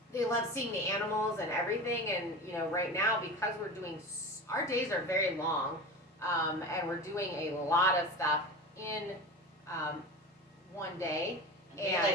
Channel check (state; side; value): normal; both; correlation 0.30